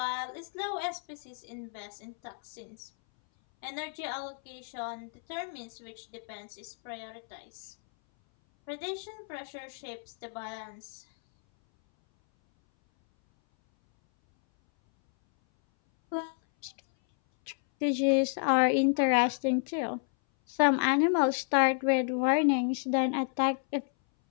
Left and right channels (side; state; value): right; silent; 57 dB below the other